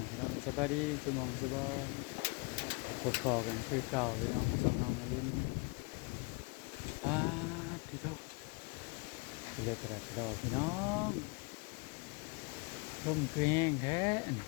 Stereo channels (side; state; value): right; quieter; 30.7 dB